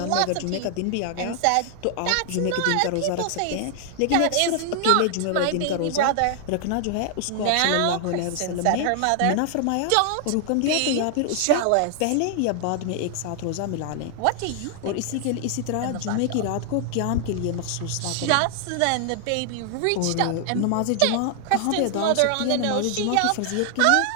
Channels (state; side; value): different; both; correlation 0.00